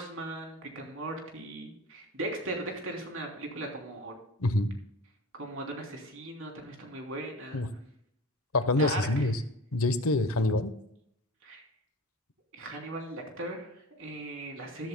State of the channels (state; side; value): normal; both; correlation 0.35